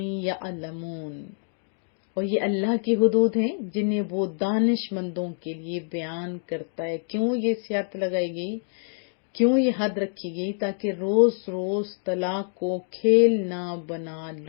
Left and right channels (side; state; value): right; silent; digital silence